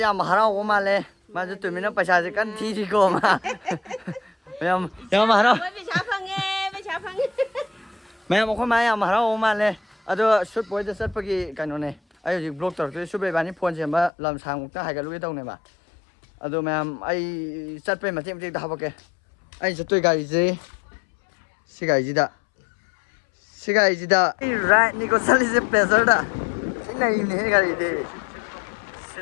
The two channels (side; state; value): right; drops out; at 14.1 s